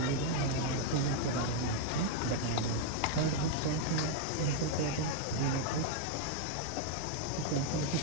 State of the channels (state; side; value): different; both; correlation 0.00